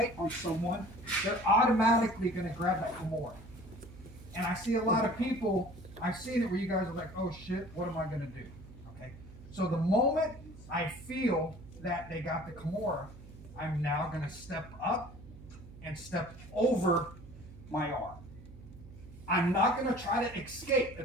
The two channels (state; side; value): noise; right; hum, 17 dB below the sound